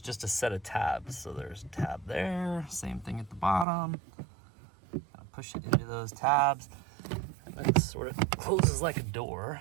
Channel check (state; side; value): drops out; left; at 3.7 s